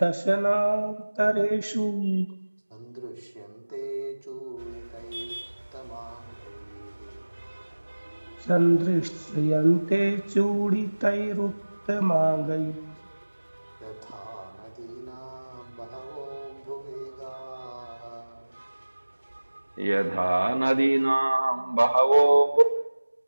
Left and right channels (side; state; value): both; inverted; correlation -1.00